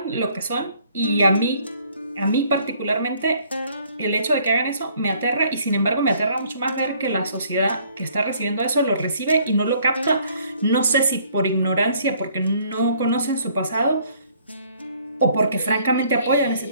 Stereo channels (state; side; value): inverted; both; correlation -0.62